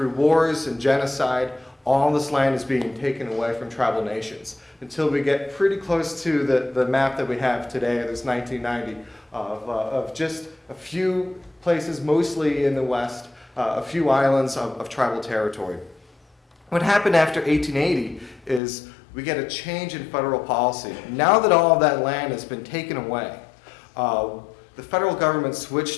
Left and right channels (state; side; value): drops out; right; at 18.6 s